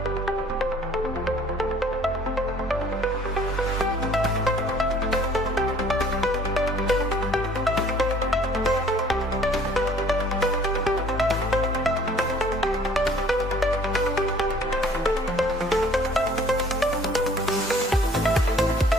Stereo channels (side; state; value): both; normal; correlation 0.55